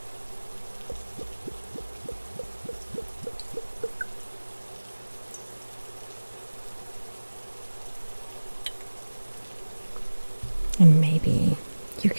And maybe you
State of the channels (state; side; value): inverted; both; correlation -1.00